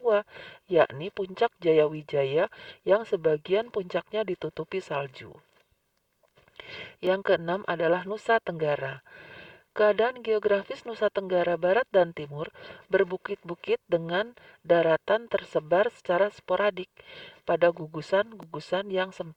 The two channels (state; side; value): identical; both; correlation 1.00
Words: yakni Puncak Jayawijaya yang sebagian puncaknya ditutupi salju. Yang keenam adalah Nusa Tenggara. Keadaan geografis Nusa Tenggara Barat dan Timur berbukit-bukit dengan daratan tersebar secara sporadik pada gugusan-gugusan yang